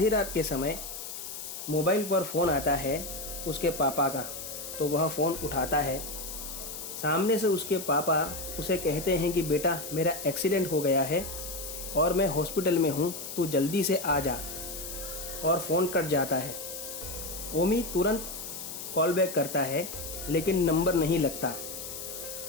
रात के समय मोबाइल पर फ़ोन आता है उसके पापा का, तो वह फ़ोन उठाता है। सामने से उसके पापा उसे कहते हैं कि बेटा, मेरा एक्सीडेंट हो गया है और मैं हॉस्पिटल में हूँ, तू जल्दी से आ जा। और फ़ोन कट जाता है। ओमी तुरंत कॉल बैक करता है लेकिन नंबर नहीं लगता।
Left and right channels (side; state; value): left; noise; hiss, 8 dB below the sound